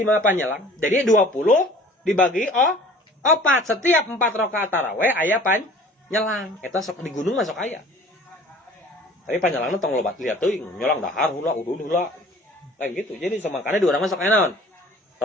panyelang. Jadi 20 dibagi 4, setiap 4 rakaat tarawih aya panyelang. Eta sok di gunung masuk aya. Tapi panjelangna tong lobat lihat teuing, nyolang dahar heula udun heula. Kayak gitu. Jadi makanya di urang masuk aya naon?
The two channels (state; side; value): normal; both; correlation 0.48